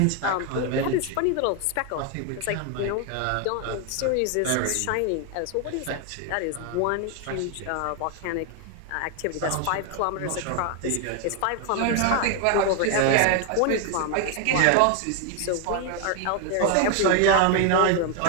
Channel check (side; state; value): both; different; correlation 0.01